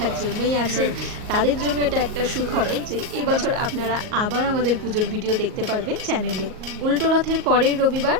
জন্যই আছেন, তাদের জন্য এটা একটা সুখবর যে এবছর আপনারা আবার আমাদের পুজোর ভিডিও দেখতে পারবেন চ্যানেলে। উল্টো রথের পরের রবিবার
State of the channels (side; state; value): left; late; 38 ms